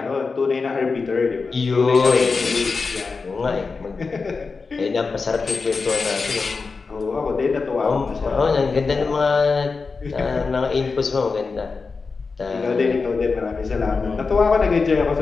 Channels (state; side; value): quieter; right; 4.5 dB